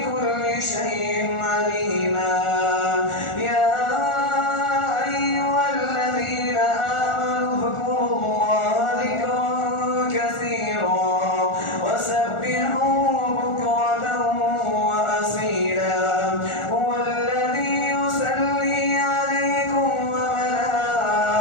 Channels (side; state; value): right; late; 1.4 ms